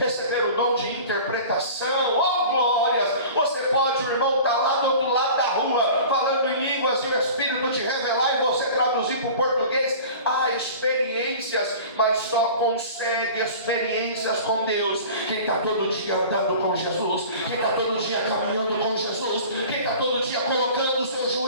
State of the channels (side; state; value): both; inverted; correlation -0.40